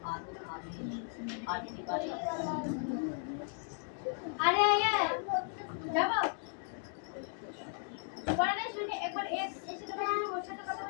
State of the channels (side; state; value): right; silent; 54 dB below the other